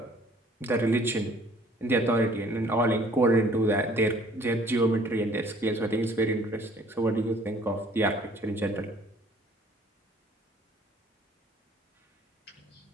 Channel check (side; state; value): both; normal; correlation 0.57